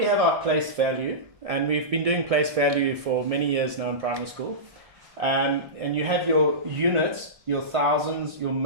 have our place value, and we've been doing place value for many years now in primary school. And you have your units, your thousands, your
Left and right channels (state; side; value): late; left; 1.6 ms